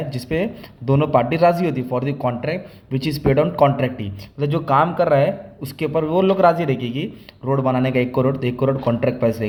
जिसपे दोनों पार्टी राजी होती है for the contract which is paid on contractee. मतलब जो काम कर रहा है उसके ऊपर वो लोग राजी रहेगी कि रोड बनाने का 1 करोड़, तो 1 करोड़ कॉन्ट्रैक्ट प्राइस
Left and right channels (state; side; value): identical; both; correlation 1.00